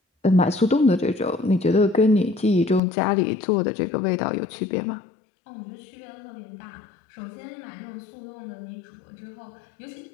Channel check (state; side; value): drops out; right; at 2.8 s